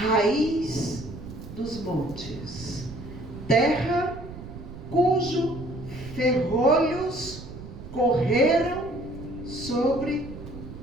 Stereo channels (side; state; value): right; noise; rumble, 13 dB below the sound